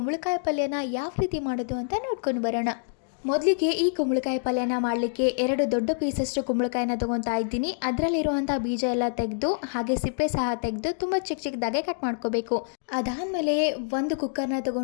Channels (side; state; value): right; silent; digital silence